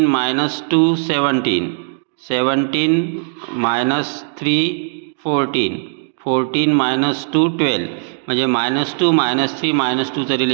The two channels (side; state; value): left; silent; 65 dB below the other